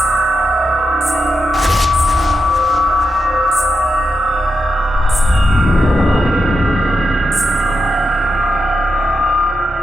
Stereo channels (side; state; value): both; normal; correlation 0.85